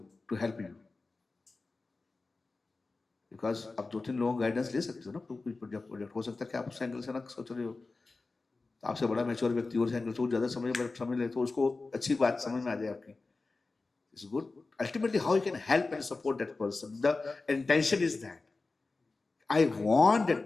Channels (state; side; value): quieter; right; 3.7 dB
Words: to help you. Because अब 2-3 लोगों guidance ले सकते हो ना, कोई project हो सकता है कि आप उस एंगल से ना सोच रहे हो, आपसे बड़ा मैच्योर व्यक्ति और एंगल से ज्यादा समझ ले तो उसको अच्छी बात समझ में आ जाए आपकी, It's good. Ultimately, how you can help and support that person. The intention is that I want